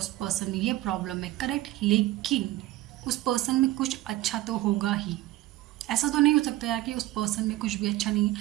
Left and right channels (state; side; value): quieter; left; 16.2 dB